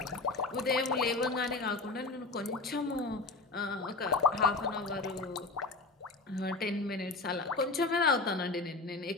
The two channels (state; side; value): quieter; right; 3.6 dB